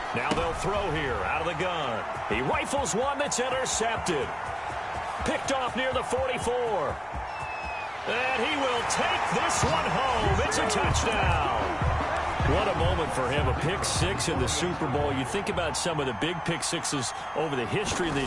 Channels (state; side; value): identical; both; correlation 1.00